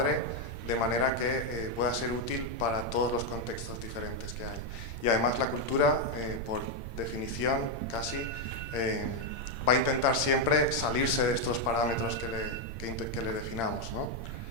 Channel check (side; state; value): right; late; 8.8 ms